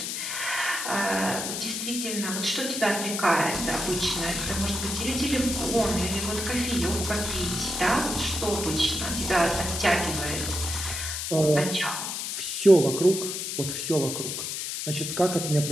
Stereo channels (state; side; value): noise; left; hiss, 4 dB below the sound